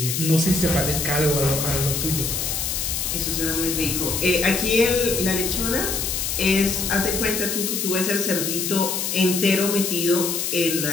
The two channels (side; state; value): left; noise; hiss, 1 dB below the sound